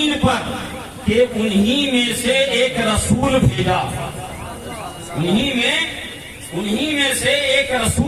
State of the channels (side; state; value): both; identical; correlation 1.00